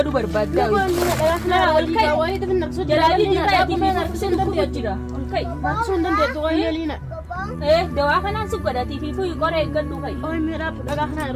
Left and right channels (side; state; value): both; identical; correlation 1.00